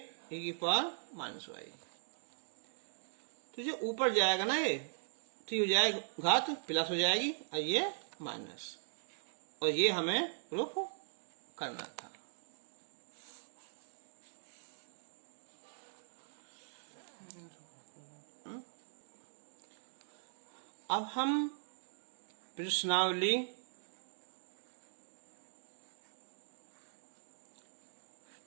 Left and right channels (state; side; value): silent; left; digital silence